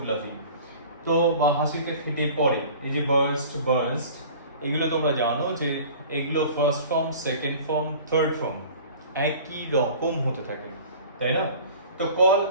লাফিং, তো বা হাসিতে ফেটে পড়ে। এই যে বার্স্ট এগুলো তোমরা জানো যে এগুলো first form, second form, third form একই রকম হতে থাকে, তাই না? তো কল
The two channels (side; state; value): both; inverted; correlation -0.44